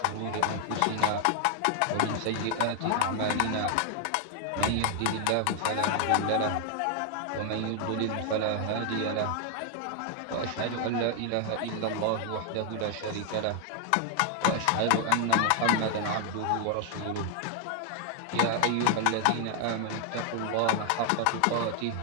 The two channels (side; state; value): both; different; correlation 0.00